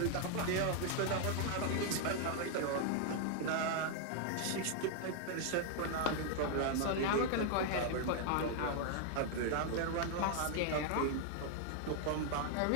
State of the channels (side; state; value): both; different; correlation 0.00